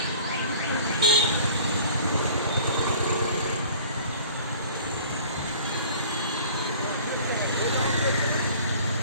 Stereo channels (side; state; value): both; inverted; correlation -0.48